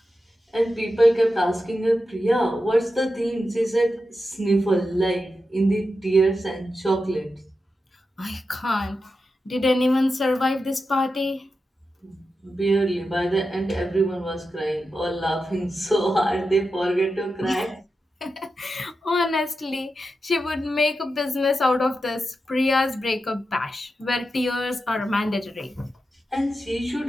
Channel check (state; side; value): normal; both; correlation 0.90